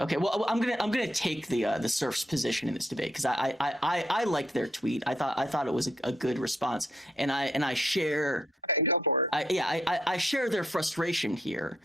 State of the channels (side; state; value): both; normal; correlation 0.74